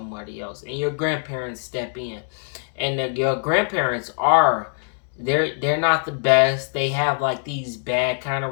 else. And your grandparents step in, and your grandparents are, they're not the best. They have like these bad kind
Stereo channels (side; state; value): right; silent; digital silence